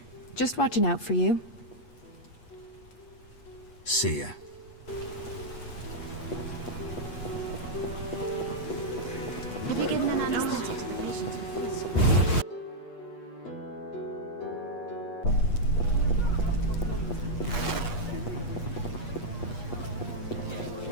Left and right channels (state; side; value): late; right; 8.4 ms